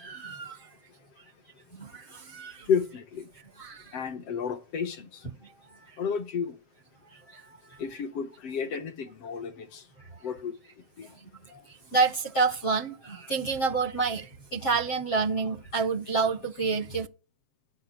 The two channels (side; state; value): right; late; 7.5 ms